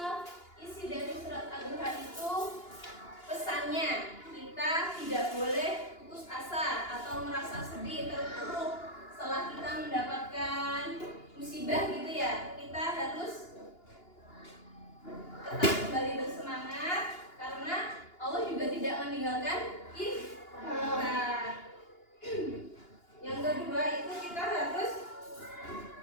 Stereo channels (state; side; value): late; right; 2.9 ms